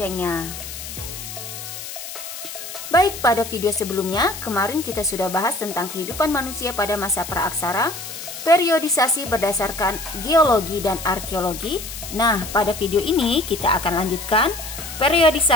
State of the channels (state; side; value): noise; left; hiss, 10 dB below the sound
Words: Baik, pada video sebelumnya, kemarin kita sudah bahas tentang kehidupan manusia pada masa praaksara, periodisasi berdasarkan geologi dan arkeologi. Nah, pada video ini kita akan lanjutkan